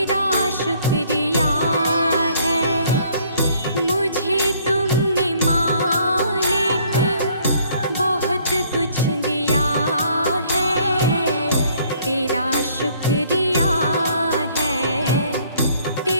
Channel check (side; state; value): both; inverted; correlation -0.61